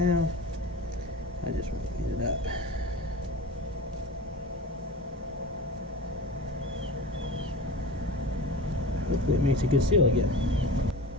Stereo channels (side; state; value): both; normal; correlation 0.32